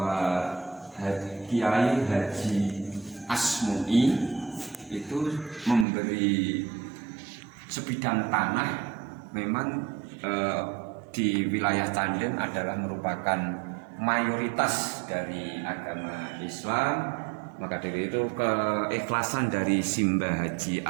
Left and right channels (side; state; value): left; drops out; at 5.9 s